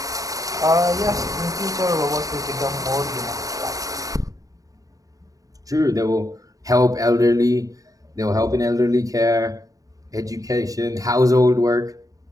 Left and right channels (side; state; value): left; late; 0.17 ms